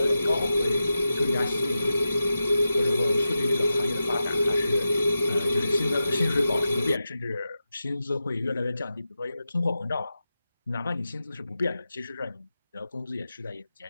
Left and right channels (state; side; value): inverted; both; correlation -0.91